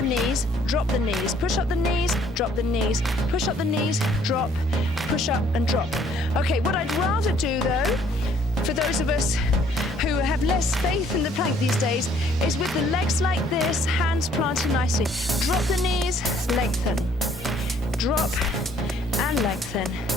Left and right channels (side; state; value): both; normal; correlation 0.61